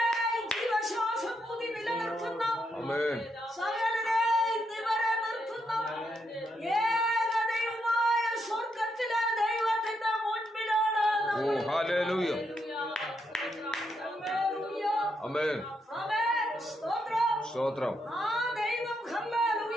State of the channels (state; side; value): normal; both; correlation 0.80